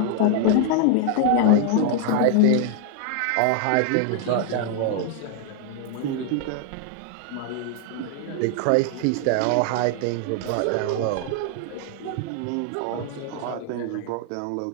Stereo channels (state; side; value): different; both; correlation 0.00